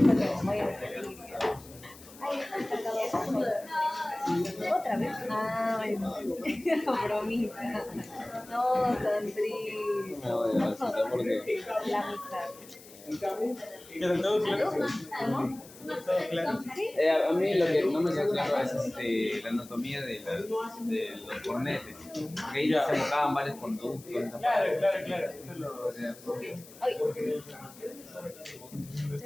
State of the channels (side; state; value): left; noise; hiss, 20 dB below the sound